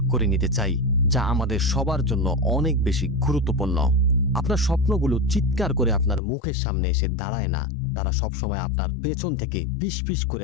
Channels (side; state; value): right; drops out; at 6.2 s